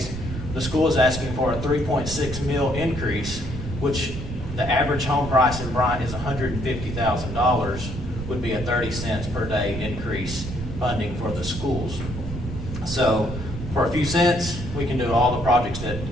the school is asking for a $3.6 million increase, which the average home price in Bryant is $150,000, would be a 30 cents per day increase funding for the schools. So for a few cents, we can do all the projects that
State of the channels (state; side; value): noise; right; rumble, 7 dB below the sound